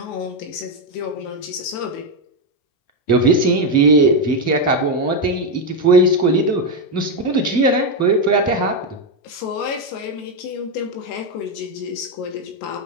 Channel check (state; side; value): late; right; 19 ms